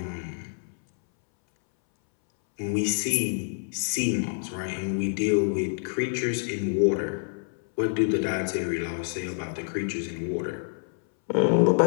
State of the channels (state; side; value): silent; right; 60 dB below the other